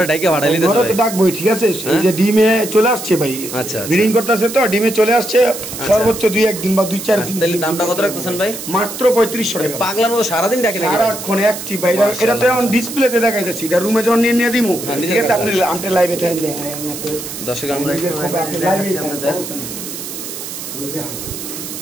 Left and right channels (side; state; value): right; noise; hiss, 9 dB below the sound